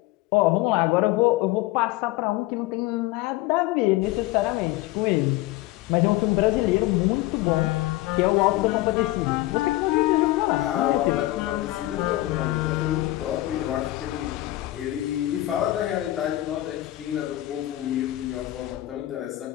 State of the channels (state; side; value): quieter; right; 17.2 dB